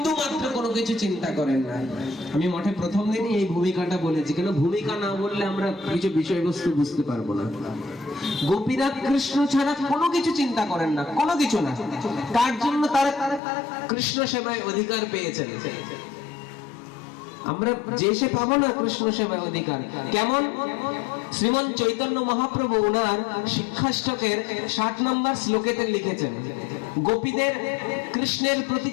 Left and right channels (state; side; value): drops out; right; at 13.4 s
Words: মাত্র কোনো কিছু চিন্তা করেন না। আমি মঠে প্রথম দিনই এই ভূমিকাটা বলেছি, কেন ভূমিকা না বললে আমরা কিছু বিষয়বস্তু বুঝতে পারবো না। গোপীরা কৃষ্ণ ছাড়া কোনো কিছু চিন্তা করেন না, কোনো কিছু না। তার জন্য তারা কৃষ্ণ সেবায় অধিকার পেয়েছেন। আমরা যে সে পাবো না কৃষ্ণ সেবায় অধিকার। কেমন? শ্রীমন চৈতন্য মহাপ্রভু উনার শিক্ষাষ্টকের 7 নম্বর শ্লোকেতে লিখেছেন, গোপীদের কৃষ্ণের প্রতি